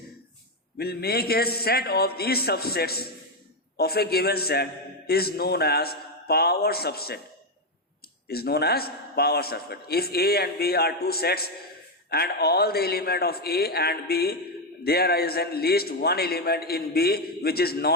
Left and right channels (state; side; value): normal; both; correlation 0.05